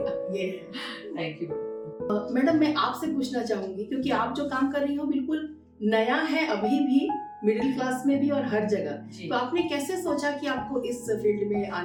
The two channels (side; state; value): both; identical; correlation 1.00